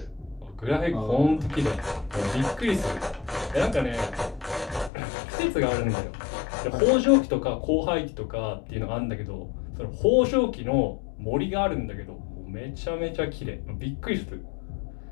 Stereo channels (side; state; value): right; drops out; at 4.9 s